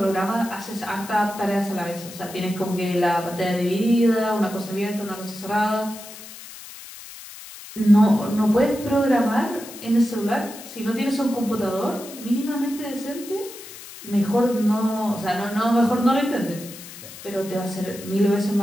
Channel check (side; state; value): left; noise; hiss, 15 dB below the sound